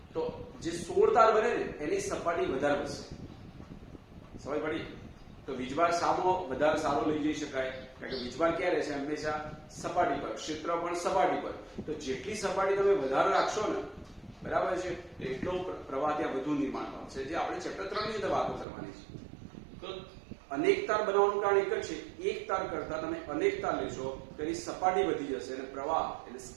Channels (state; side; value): drops out; left; at 18.7 s